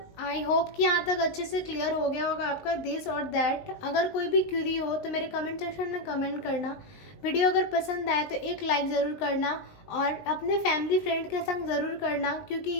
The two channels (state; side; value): late; right; 19 ms